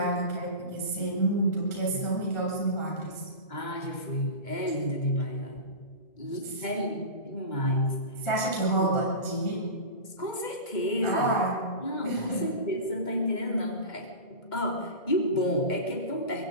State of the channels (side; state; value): right; late; 2.2 ms